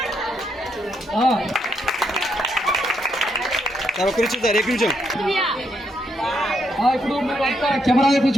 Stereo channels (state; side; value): normal; both; correlation 0.78